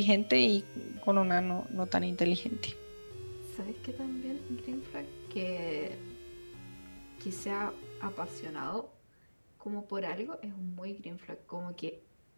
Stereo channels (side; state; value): both; inverted; correlation -1.00